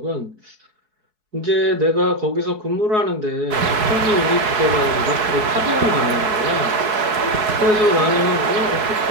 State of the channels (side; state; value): left; late; 4.7 ms